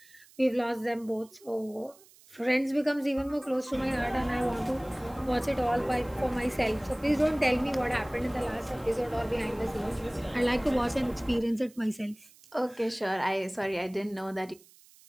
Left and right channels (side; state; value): right; noise; hiss, 26 dB below the sound